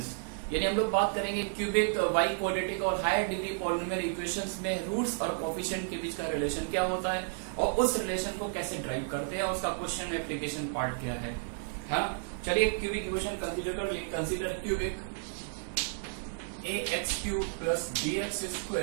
यानी हम लोग बात करेंगे क्यूबिक, वाई क्वाड्रेटिक और हायर डिग्री पॉलिनोमियल इक्वेशंस में रूट्स और कोफिशिएंट के बीच का रिलेशन क्या होता है और उस रिलेशन को कैसे ड्राइव करते हैं और उसका क्वेश्चन एप्लीकेशन पार्ट क्या है। हाँ, चलिए क्यूबिक इक्वेशन कंसीडर कर लिए। Consider cubic ax cube plus bx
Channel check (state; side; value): silent; left; digital silence